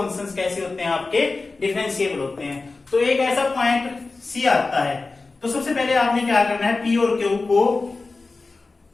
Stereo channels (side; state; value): right; quieter; 3.7 dB